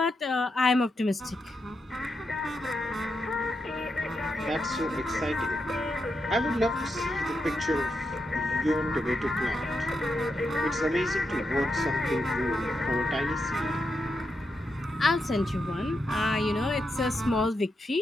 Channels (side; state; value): both; normal; correlation 0.85